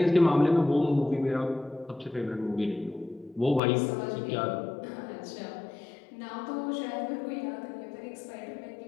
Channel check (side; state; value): right; drops out; at 3.6 s